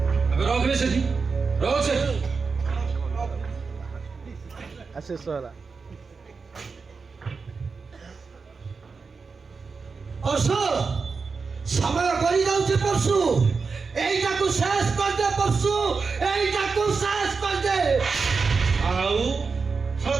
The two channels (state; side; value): quieter; left; 4.8 dB